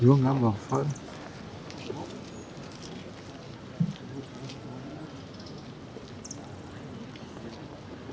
eu andava fora.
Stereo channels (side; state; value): both; identical; correlation 1.00